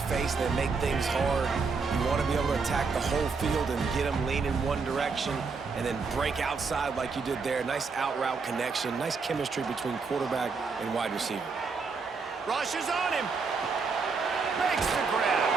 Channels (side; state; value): left; quieter; 4.8 dB